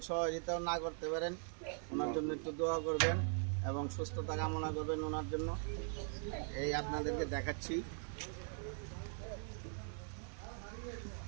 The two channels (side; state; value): left; silent; 50 dB below the other